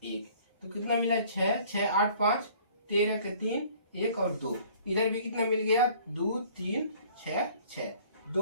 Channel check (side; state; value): both; inverted; correlation -0.54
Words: 1, तो कितना मिला 6 6 8 5 13 के 3 1 और 2, इधर भी कितना मिल गया 2 3 6 6,